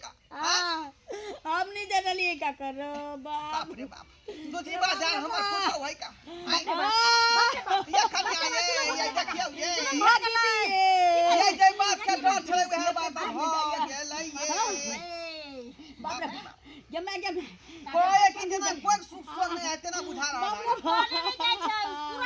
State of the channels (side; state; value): both; identical; correlation 1.00